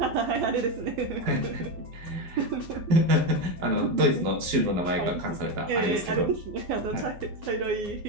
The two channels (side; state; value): left; late; 12 ms